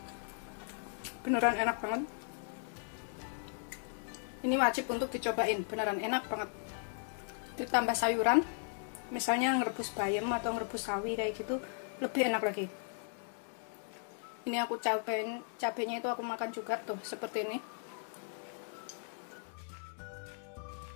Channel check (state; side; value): silent; right; 53 dB below the other